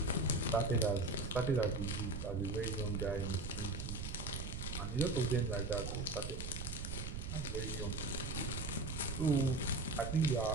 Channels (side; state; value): right; noise; rumble, 5 dB below the sound